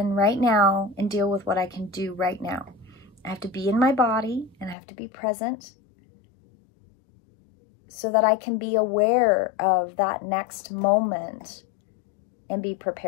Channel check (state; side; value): drops out; right; at 4.8 s